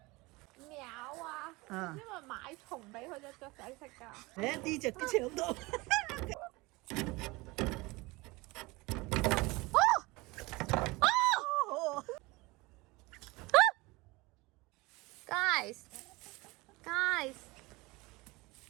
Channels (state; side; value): quieter; left; 23.1 dB